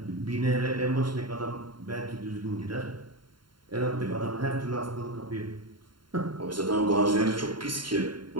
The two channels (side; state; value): left; late; 0.72 ms